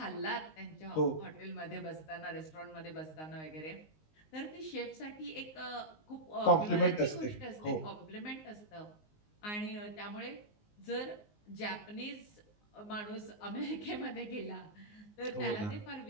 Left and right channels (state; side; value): late; right; 19 ms